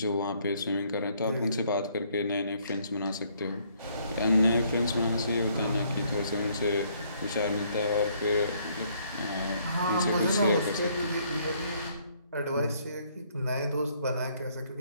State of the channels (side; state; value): both; inverted; correlation -0.66